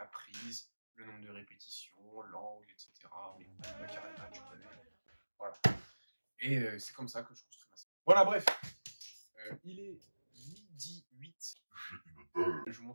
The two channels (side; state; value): both; inverted; correlation -1.00